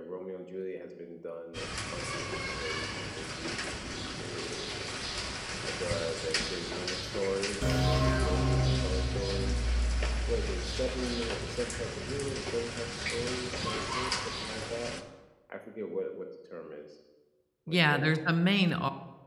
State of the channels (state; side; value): identical; both; correlation 1.00